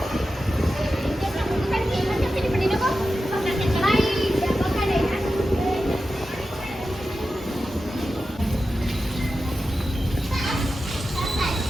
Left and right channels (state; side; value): normal; both; correlation 0.92